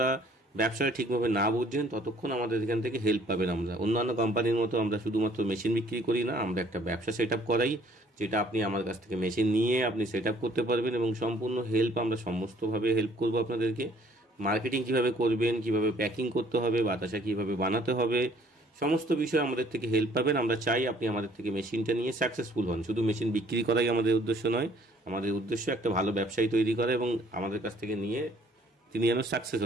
ব্যবসাটা ঠিকভাবে না বুঝছেন, ততক্ষণ আমাদের এখান থেকে হেল্প পাবেন। আমরা অন্যান্য কোম্পানির মতো আমরা শুধুমাত্র মেশিন বিক্রি করি না, আমরা একটা ব্যবসা সেট আপ করাই, যেটা আপনি আমার কাছ থেকে মেশিন নিয়ে আপনি সেট আপ করতে পারবেন এবং সম্পূর্ণ হেল্প আমরা সমস্তভাবে হেল্প করবো আপনাদেরকে। মার্কেটিং কিভাবে করবেন, কিভাবে প্যাকিং করতে হবে, বাতাসা কিভাবে বানাতে হবে, সমস্ত বিষয়ে আমাদের থেকে হেল্প পাবেন। আমরা চাই আপনি আমাদের থেকে মেশিনটা নিয়ে সাকসেসফুল হন। শুধু মেশিন বিক্রি করাই আমাদের উদ্দেশ্য নয়, আমাদের উদ্দেশ্য একটা ভালো ব্যবসায়ী তৈরি করা এবং আমাদের কাছ থেকে নিয়ে তিনি যেন সাকসেস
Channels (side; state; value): both; normal; correlation 0.59